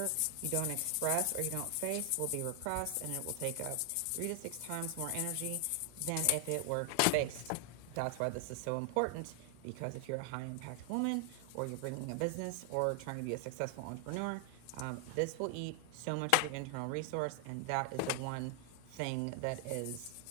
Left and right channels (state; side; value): different; both; correlation 0.00